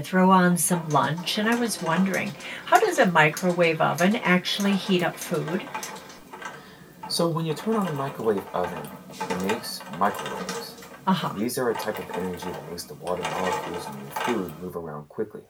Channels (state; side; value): identical; both; correlation 1.00